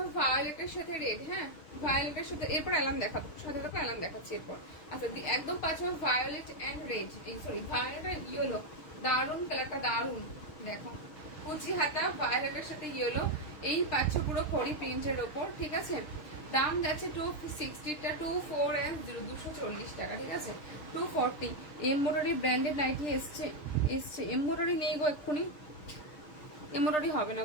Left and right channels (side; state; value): right; late; 6.7 ms